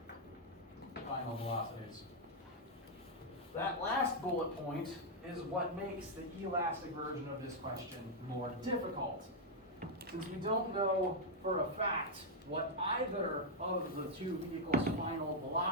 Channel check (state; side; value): normal; both; correlation -0.02